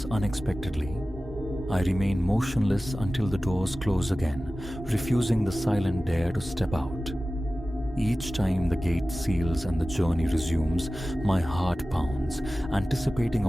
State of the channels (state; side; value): normal; both; correlation 0.96